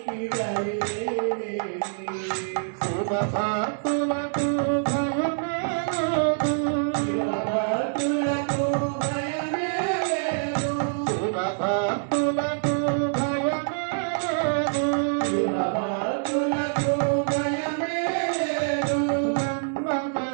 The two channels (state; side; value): silent; left; digital silence